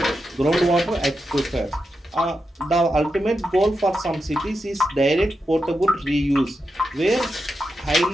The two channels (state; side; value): normal; both; correlation 0.88